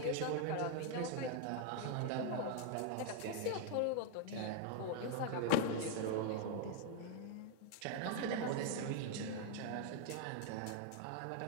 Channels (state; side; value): different; both; correlation 0.00